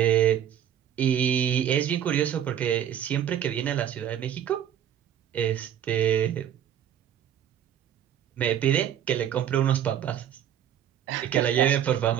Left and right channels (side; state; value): left; quieter; 10.1 dB